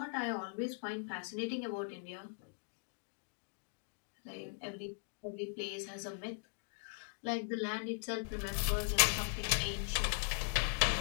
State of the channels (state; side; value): silent; right; digital silence